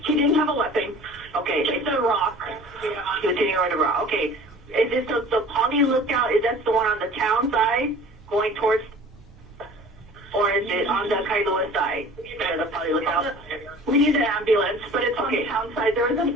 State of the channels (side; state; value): both; normal; correlation 0.45